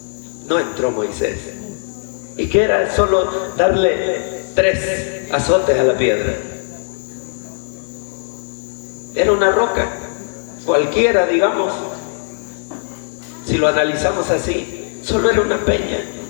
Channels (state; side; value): silent; right; 57 dB below the other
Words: No entró Moisés. ¿Y qué era? Solo darle 3 azotes a la piedra. Era una roca, cualquiera, digamos. Si lo analizamos así, solo era una peña.